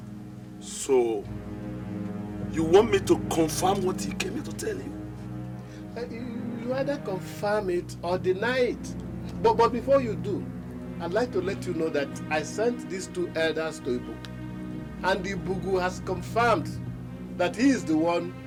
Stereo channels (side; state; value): both; identical; correlation 1.00